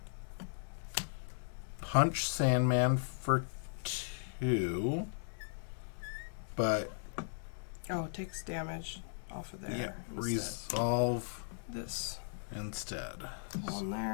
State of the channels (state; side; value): silent; right; digital silence